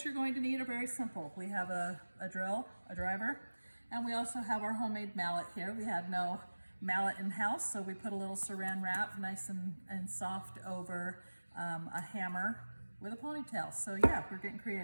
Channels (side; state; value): both; inverted; correlation -1.00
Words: you're going to need are very simple. We have a drill, a driver, and we also have our homemade mallet here. We had no mallet in-house, so we put a little saran wrap nice and soft over a hammer with a ponytail. So yeah, we're getting